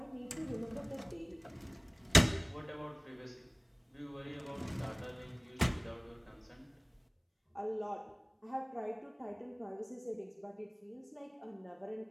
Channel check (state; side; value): identical; both; correlation 1.00